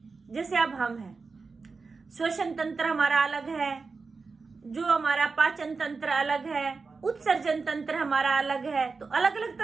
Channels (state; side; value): quieter; left; 4.4 dB